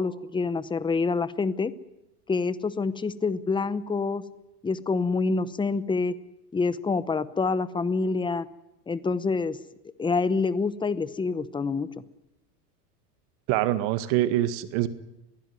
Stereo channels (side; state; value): both; normal; correlation 0.58